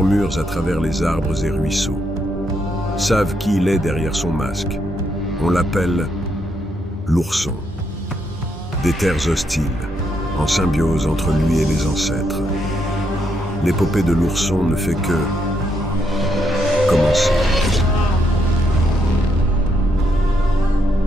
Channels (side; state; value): both; normal; correlation 0.77